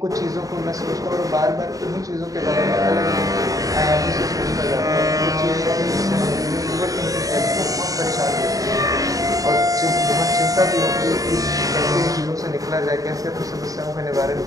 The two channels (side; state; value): left; late; 0.17 ms